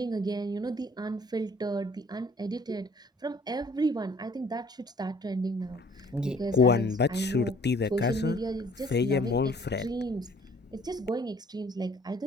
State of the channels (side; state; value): both; normal; correlation 0.57